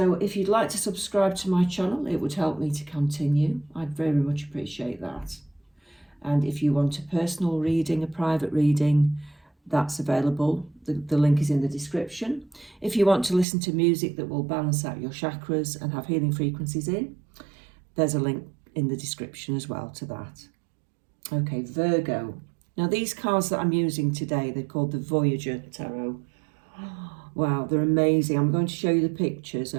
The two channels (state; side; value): drops out; left; at 13.5 s